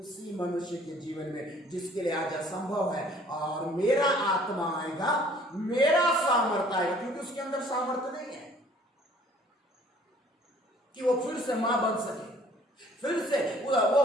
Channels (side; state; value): both; normal; correlation 0.56